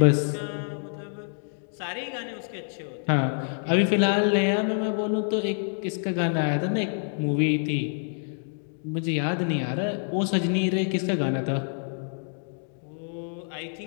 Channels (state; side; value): silent; right; 59 dB below the other